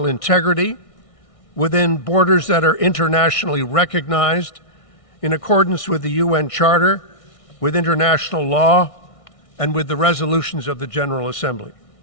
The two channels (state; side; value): late; right; 1.6 ms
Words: integrity, within borders that are internationally recognized in accordance with the UN Charter, with international law, and with the resolutions of the General Assembly.